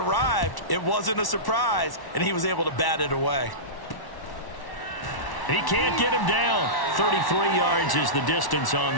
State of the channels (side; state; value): right; late; 1.1 ms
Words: it wasn't a surprise, and he was able to bat it away. He can't get him down. 33 yards is the distance on